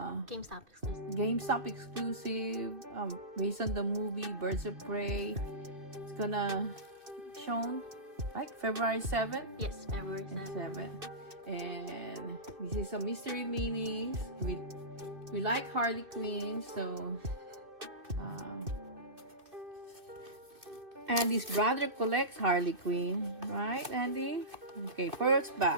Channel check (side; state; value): left; late; 2.6 ms